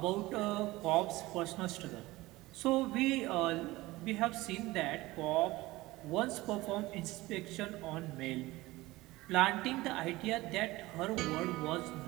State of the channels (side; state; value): left; quieter; 19.4 dB